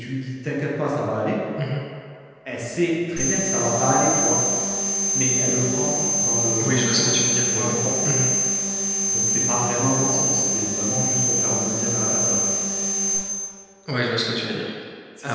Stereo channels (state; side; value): identical; both; correlation 1.00